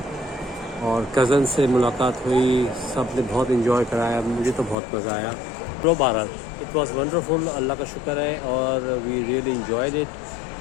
और कज़न से मुलाकात हुई, सब ने बहुत इन्जॉय कराया, मुझे तो बहुत मज़ा आया। लो बहरहाल इट वॉज वंडरफुल, अल्लाह का शुक्र है और we really enjoyed it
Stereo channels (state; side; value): drops out; right; at 4.8 s